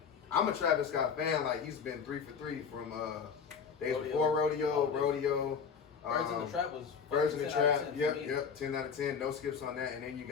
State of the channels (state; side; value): quieter; right; 6.5 dB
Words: I'm a Travis Scott fan. Like, he's been 3 for 3 from days before Rodeo. Birds in the Trap was Birds in the 10 out of Trap, 10 for me. yep, 10 out of 10, no skips on that, and then you